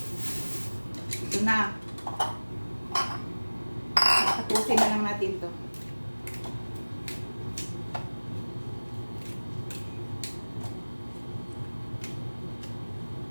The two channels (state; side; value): inverted; both; correlation -1.00